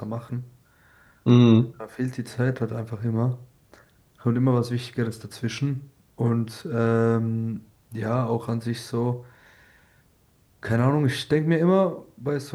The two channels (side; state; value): both; identical; correlation 1.00